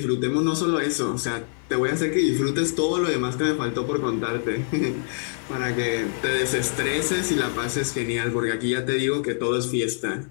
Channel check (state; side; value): silent; right; 61 dB below the other